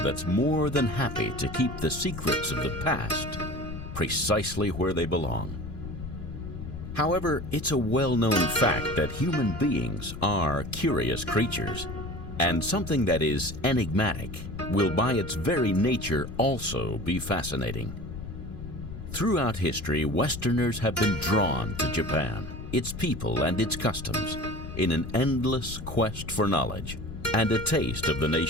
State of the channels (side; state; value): left; noise; rumble, 9 dB below the sound